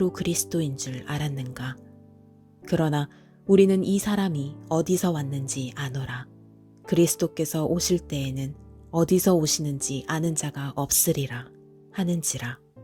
그리스도인 줄 알았는가. 그러나 우리는 이 사람이 어디서 왔는지 아노라. 그리스도께서 오실 때에는 어디서 오시는지 아는 자가 없으리라 하는지라.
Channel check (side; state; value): both; identical; correlation 1.00